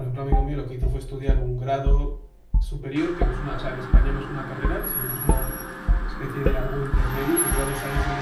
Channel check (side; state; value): both; identical; correlation 1.00